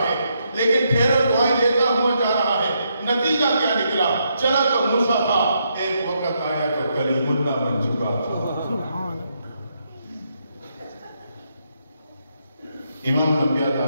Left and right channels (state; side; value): inverted; both; correlation -0.78